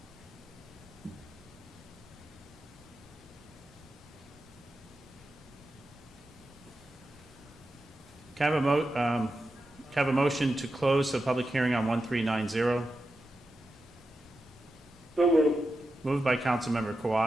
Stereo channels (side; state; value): both; normal; correlation 0.90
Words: Can I have a motion to close the public hearing on 1390? So moved. Moved by Councilmember